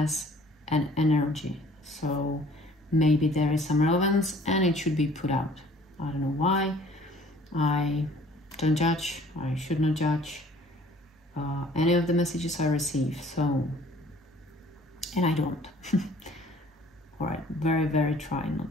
an energy. So maybe there is some relevance and it should be put out. I don't know why. I don't judge. I should not judge any of the messages I receive. So, and I don't. All right, very try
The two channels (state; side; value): normal; both; correlation 0.54